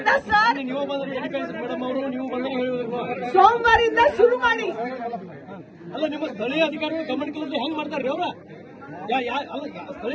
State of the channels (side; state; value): both; identical; correlation 1.00